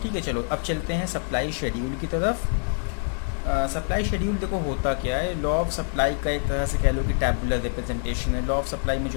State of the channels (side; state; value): right; silent; digital silence